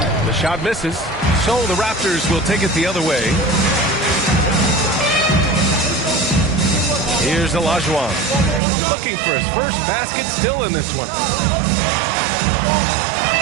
The shot misses, so the Raptors will take it the other way. Here's Olajuwon, looking for his first basket, still in this one.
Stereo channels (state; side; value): drops out; left; at 8.6 s